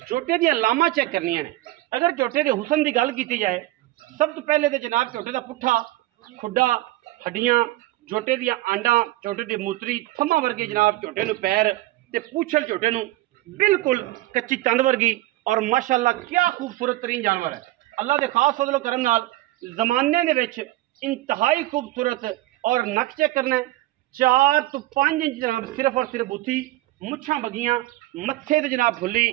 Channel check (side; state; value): left; quieter; 17.5 dB